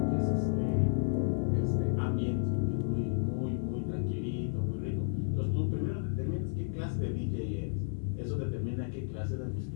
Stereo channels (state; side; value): silent; right; 56 dB below the other